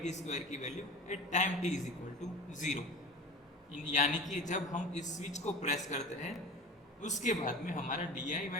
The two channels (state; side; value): normal; both; correlation 0.36